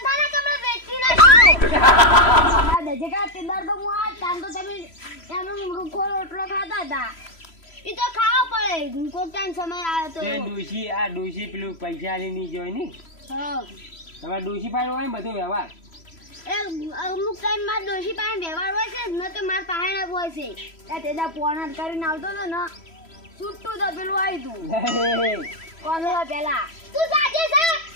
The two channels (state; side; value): late; right; 3.0 ms